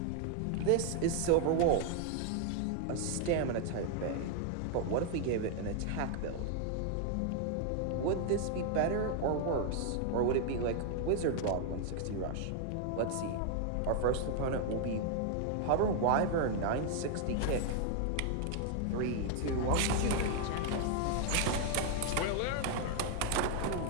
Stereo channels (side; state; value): both; different; correlation 0.00